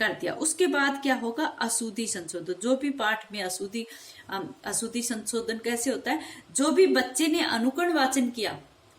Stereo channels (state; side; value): identical; both; correlation 1.00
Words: दिया। उसके बाद क्या होगा, अशुद्धि संशोधन। जो भी पाठ में अशुद्धि संशोधन कैसे होता है, जो भी बच्चे ने अनुकरण वाचन किया,